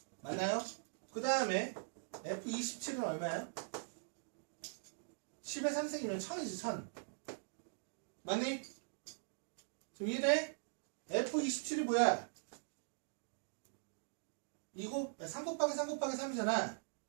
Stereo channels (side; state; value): left; silent; digital silence